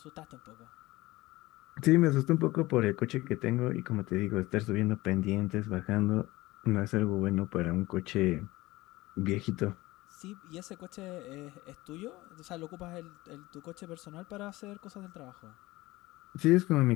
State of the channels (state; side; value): quieter; right; 19.6 dB